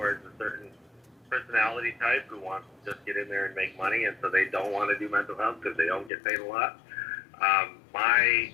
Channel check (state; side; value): drops out; right; at 6.1 s